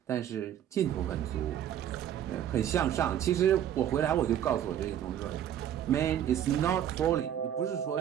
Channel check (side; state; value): left; quieter; 10.4 dB